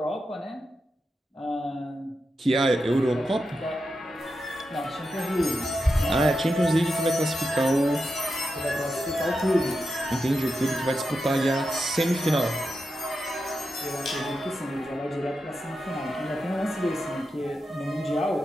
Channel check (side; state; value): both; normal; correlation 0.88